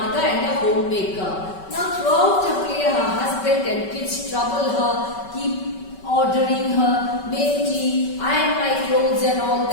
and a homemaker. Now throughout the play, her husband and kids trouble her, keep ordering her, make tea, iron my clothes and all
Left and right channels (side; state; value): right; late; 5.3 ms